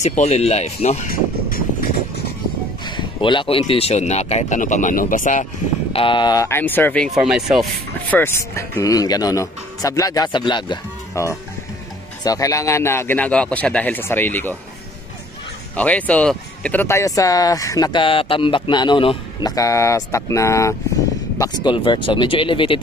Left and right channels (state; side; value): normal; both; correlation 0.55